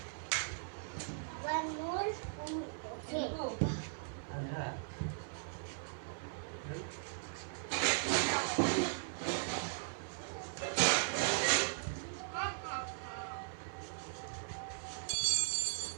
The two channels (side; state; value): left; silent; 52 dB below the other